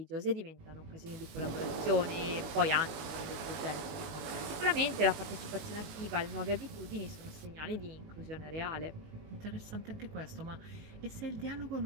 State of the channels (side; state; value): left; late; 19 ms